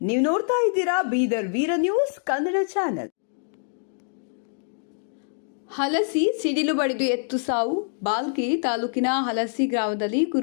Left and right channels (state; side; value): silent; right; digital silence